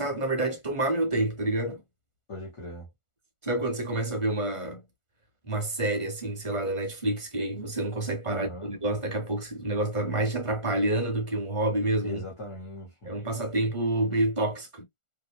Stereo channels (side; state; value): right; late; 1.4 ms